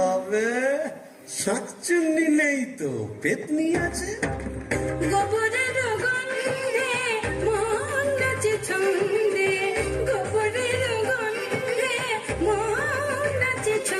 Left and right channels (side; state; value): both; identical; correlation 1.00